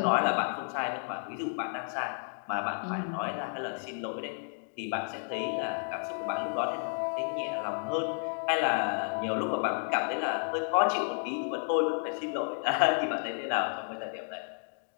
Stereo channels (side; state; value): right; silent; 57 dB below the other